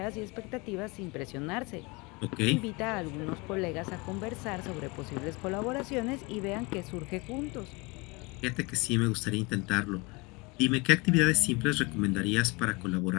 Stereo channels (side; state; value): right; quieter; 26.8 dB